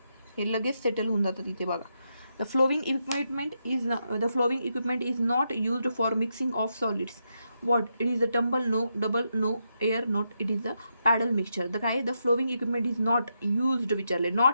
हे लगेच सेटल होऊन जातात. इथे बघा, the flowing equipment is not used for mixing of solids. What it is the tumble no, double no, air not, it is the paddle mixture. The काय, the flowing equipment is not used विचारले,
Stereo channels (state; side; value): inverted; both; correlation -0.83